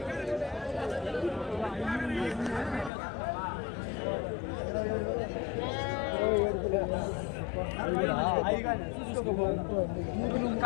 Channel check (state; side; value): drops out; right; at 2.9 s